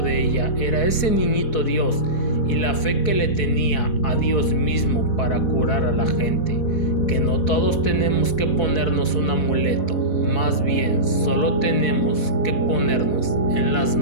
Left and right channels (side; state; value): right; late; 4.1 ms